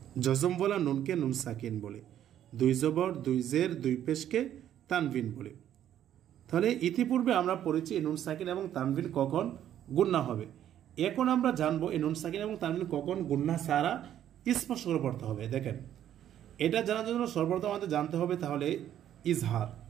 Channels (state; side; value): quieter; left; 10.9 dB